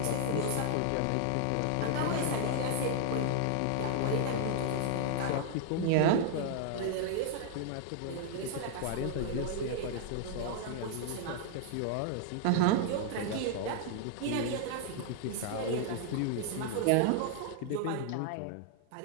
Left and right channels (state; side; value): different; both; correlation -0.01